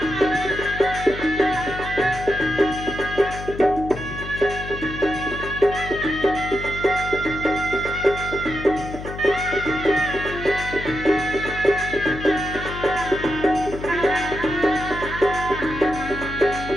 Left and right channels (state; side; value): noise; left; hum, 10 dB below the sound